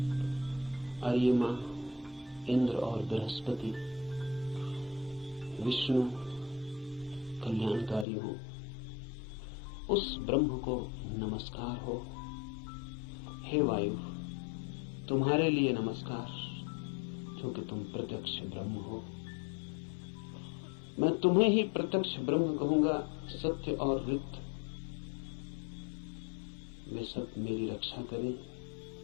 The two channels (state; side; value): drops out; right; at 8.1 s